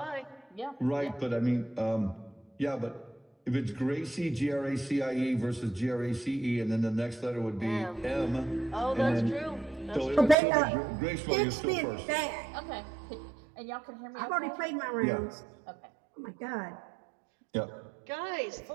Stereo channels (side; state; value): left; drops out; at 10.4 s